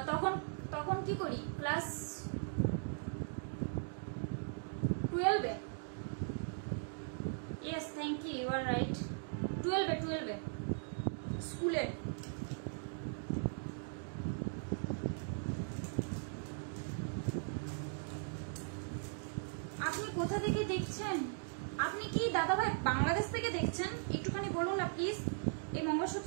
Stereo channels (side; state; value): left; silent; digital silence